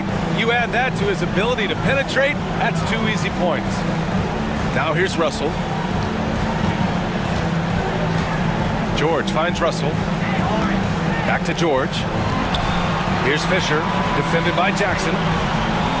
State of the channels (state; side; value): identical; both; correlation 1.00